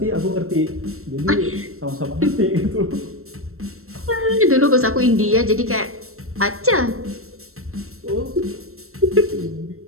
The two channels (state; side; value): late; left; 0.63 ms